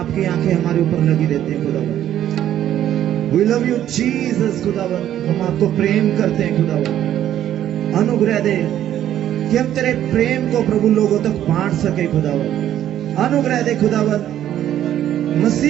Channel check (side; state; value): left; quieter; 11.4 dB